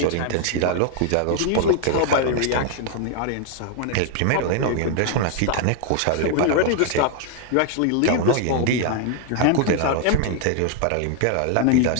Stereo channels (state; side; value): different; both; correlation 0.00